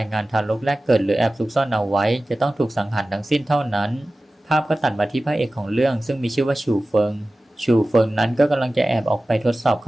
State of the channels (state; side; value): normal; both; correlation 0.96